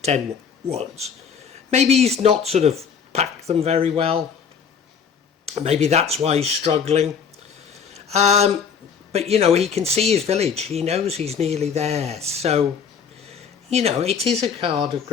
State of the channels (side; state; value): right; quieter; 6.8 dB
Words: wands. Maybe he's not sort of packed them very well. Maybe that's why he's struggling. But, you know, he can see his village. He knows he's nearly there. So, you know, it is a card of